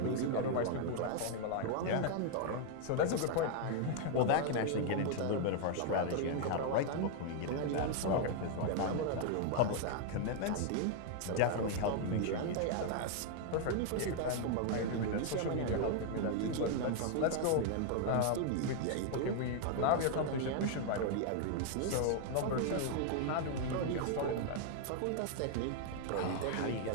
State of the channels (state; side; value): different; both; correlation 0.00